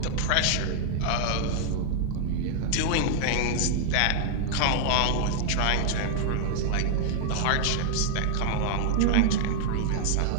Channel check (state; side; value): different; both; correlation -0.01